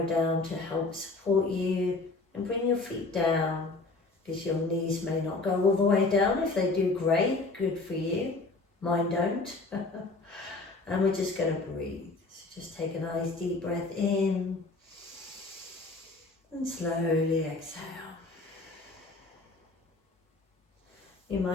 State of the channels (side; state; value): right; quieter; 3.5 dB